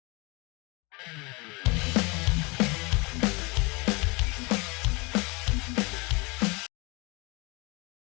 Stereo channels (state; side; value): quieter; right; 27.5 dB